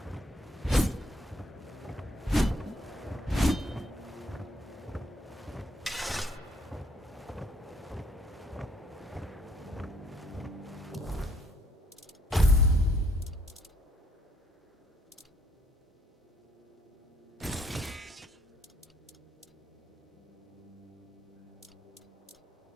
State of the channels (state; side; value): normal; both; correlation 0.66